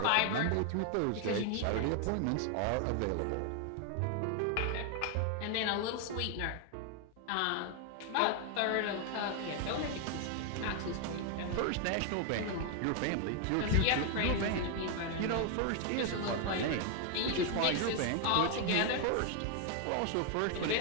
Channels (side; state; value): both; different; correlation 0.00